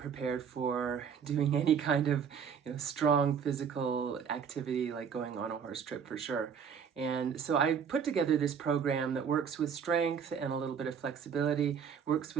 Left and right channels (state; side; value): quieter; left; 7.1 dB